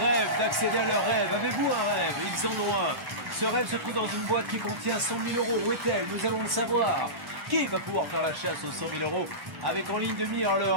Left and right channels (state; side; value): late; left; 1.1 ms